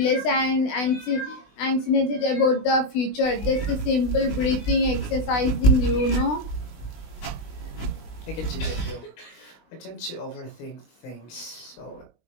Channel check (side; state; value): right; late; 20 ms